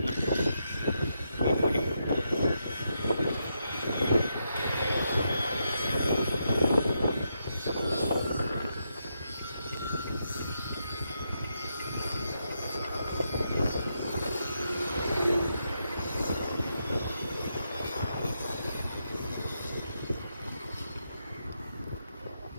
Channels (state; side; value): inverted; both; correlation -0.82